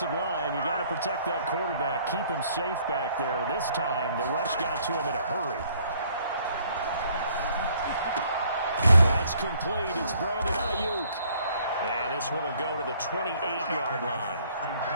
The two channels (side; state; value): both; inverted; correlation -0.62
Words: line, you got to protect that quarterback, keep him safe back there. This time, the rush got to him in a hurry. That's complete. It's Brandon Ayuk. And this one will go to the 28-yard line.